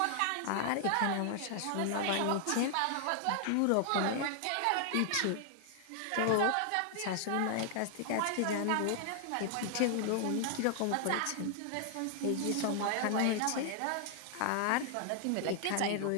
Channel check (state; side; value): different; both; correlation 0.00